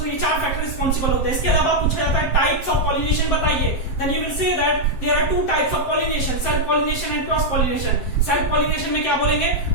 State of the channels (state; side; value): late; right; 7.7 ms